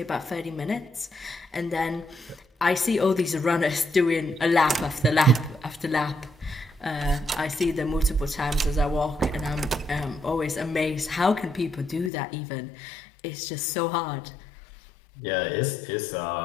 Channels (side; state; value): right; drops out; at 12.1 s